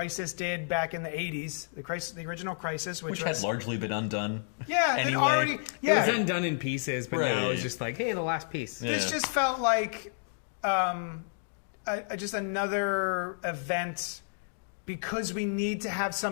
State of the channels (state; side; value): silent; right; digital silence